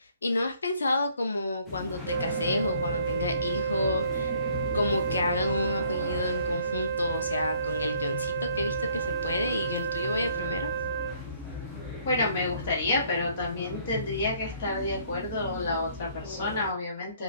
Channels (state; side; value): inverted; both; correlation -0.61